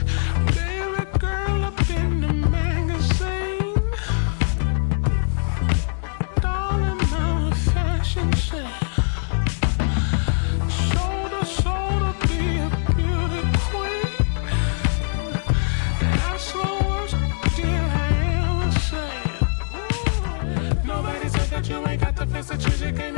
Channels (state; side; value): silent; right; digital silence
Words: baby girl up in the magazine. Darling, I'm a fashion sense. Shoulder, shoulder, be a beauty queen. That's the worst deal I ever said. Nobody said that you ain't got the face that you came